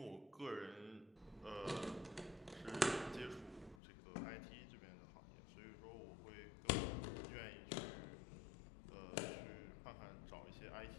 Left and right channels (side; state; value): right; drops out; at 3.8 s